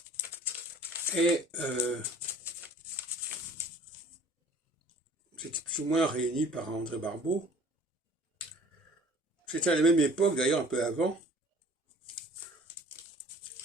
Et c'était plus ou moins réuni par André Barbeau. C'était à la même époque, d'ailleurs un peu avant,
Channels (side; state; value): both; normal; correlation 0.50